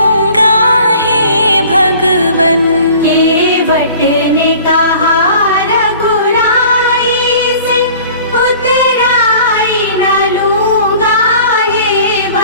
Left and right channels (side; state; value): both; inverted; correlation -0.47